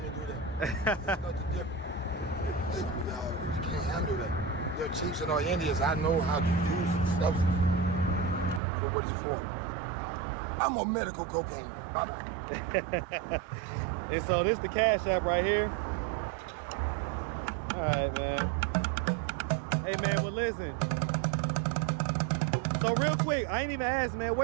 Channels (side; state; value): left; drops out; at 8.6 s